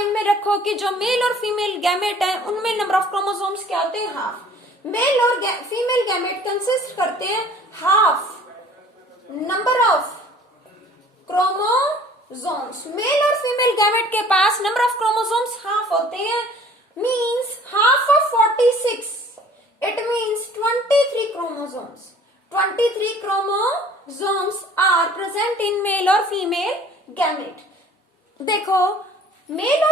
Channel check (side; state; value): both; normal; correlation 0.51